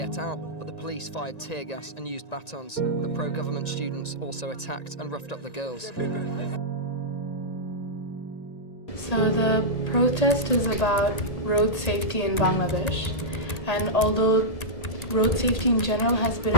out, but the police fired tear gas and used batons. The pro-government students also attacked and roughed up the girls. So the protest is about road safety in Bangladesh, and although road safety in general has been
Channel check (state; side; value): late; right; 1.9 ms